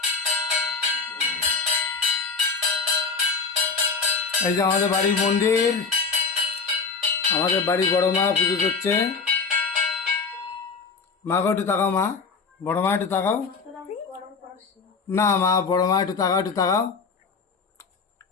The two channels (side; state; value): right; quieter; 5.0 dB